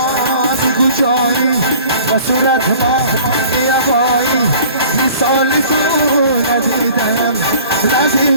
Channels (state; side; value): inverted; both; correlation -0.48